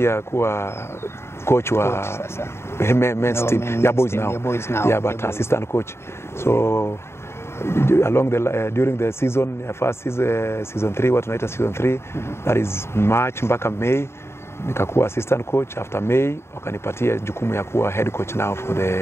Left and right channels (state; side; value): late; right; 0.12 ms